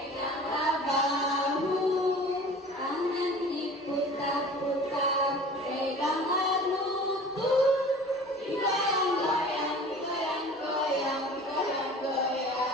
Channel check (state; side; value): normal; both; correlation 0.43